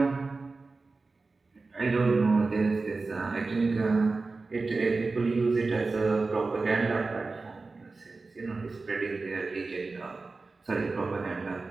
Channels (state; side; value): quieter; left; 3.8 dB